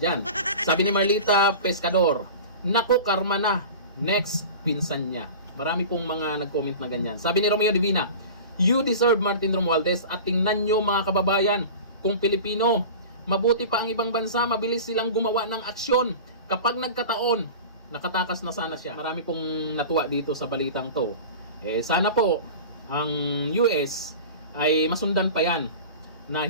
Sabi ni Marlita Pescador, naku, karma na, next, pinsan niya. Marami pong mga nag-comment na ganyan. Sabi ni Romeo Divina, you deserve Martin Romualdez at tingnan nyo mga kababayan, kung Pilipino, mabuti pa ang ibang bansa, mabilis silang gumawa ng aksyon. Kapag nagkataon, nakatakas na sana siya. Marami pong natuwa dito sa balitang to. Eh sana po, ang US ay masundan pa yan na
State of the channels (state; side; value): inverted; both; correlation -0.35